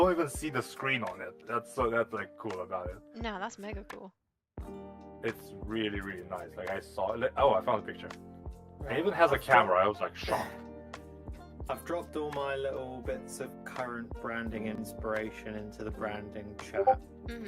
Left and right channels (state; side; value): identical; both; correlation 1.00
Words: even see the screen on it. That's like cool about it. No, that's mega cool. It's really, really nice. Like I saw it. Oh, I found a picture. It even has a camera. I was like shocked. I've dropped all my little bits of current branding inspiration into the branding chat.